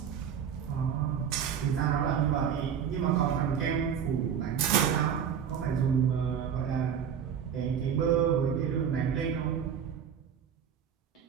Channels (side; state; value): left; quieter; 8.1 dB